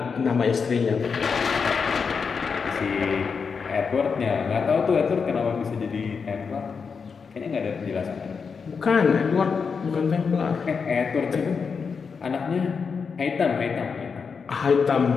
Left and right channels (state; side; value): quieter; right; 5.6 dB